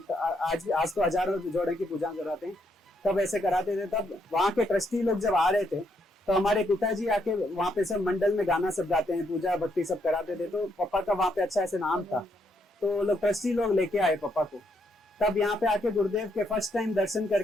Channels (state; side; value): normal; both; correlation 0.76